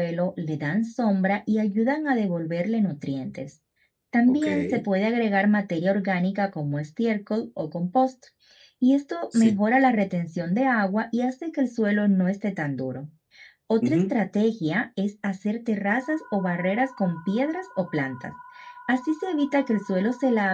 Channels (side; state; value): both; identical; correlation 1.00